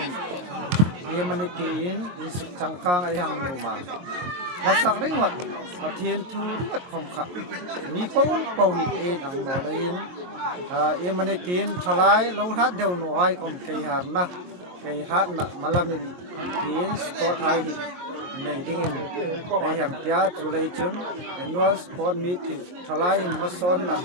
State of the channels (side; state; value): left; late; 22 ms